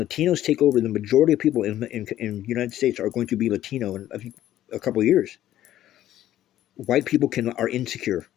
take over, the majority of people in the United States are going to be Latino in, I think, a couple of years. White people are insecure.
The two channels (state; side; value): quieter; right; 12.9 dB